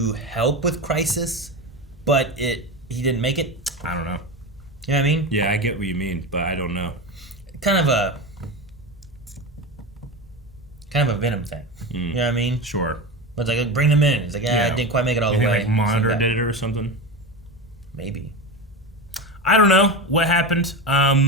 help with Crisis, but he didn't make it? I don't know. You know what I mean? Yeah, I get what you mean, but I don't know. Kind of a Venom thing. You know what I mean? Sure. But it's like, bring them in. It's like, I didn't quite make it all the way. Like Monitor did it or something? Maybe. I don't know what happened.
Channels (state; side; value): normal; both; correlation 0.22